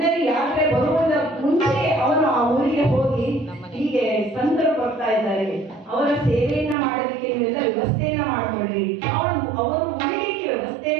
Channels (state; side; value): drops out; left; at 6.8 s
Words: ಯಾತ್ರೆ ಬರುವುದ ಮುಂಚೆ ಅವನು ಆ ಊರಿಗೆ ಹೋಗಿ ಹೀಗೆ ಸಂತರು ಬರ್ತಾ ಇದ್ದಾರೆ, ಅವರ ಸೇವೆಯನ್ನ ಮಾಡೋದಕ್ಕೆ ನೀವೆಲ್ಲ ವ್ಯವಸ್ಥೆಯನ್ನ ಮಾಡ್ಕೊಳ್ರಿ, ಅವರು ಉಳಿಲಿಕ್ಕೆ